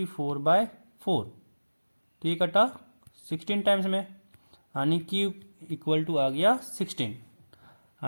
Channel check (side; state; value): both; inverted; correlation -1.00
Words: तो ये कटा 16 टाइम्स में, यानी q इक्वल टू आ गया 16